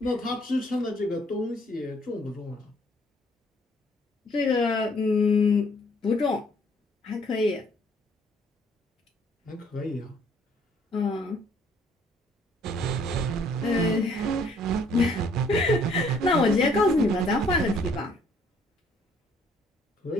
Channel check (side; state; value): both; normal; correlation 0.63